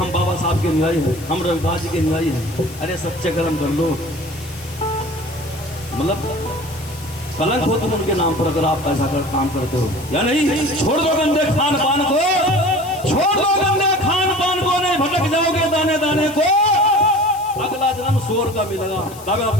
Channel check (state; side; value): noise; left; hiss, 18 dB below the sound